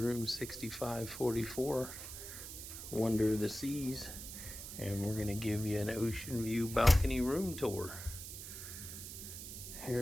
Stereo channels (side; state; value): right; noise; hiss, 10 dB below the sound